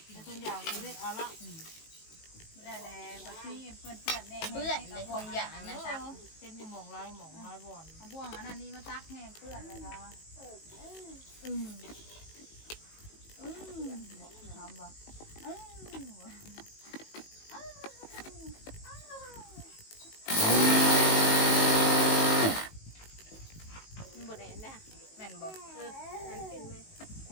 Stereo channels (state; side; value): late; right; 19 ms